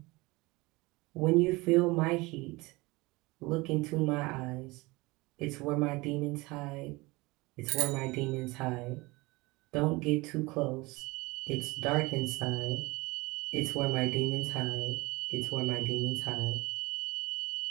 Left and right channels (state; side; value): quieter; left; 23.1 dB